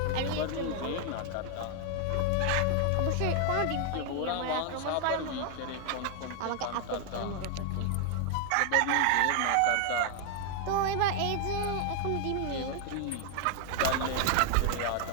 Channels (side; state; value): both; different; correlation 0.00